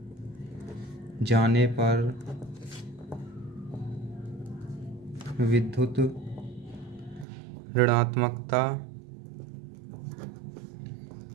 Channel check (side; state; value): left; drops out; at 7.2 s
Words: जाने पर विद्युत ऋणात्मकता